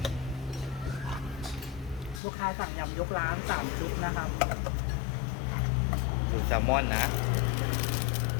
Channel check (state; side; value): drops out; right; at 2.2 s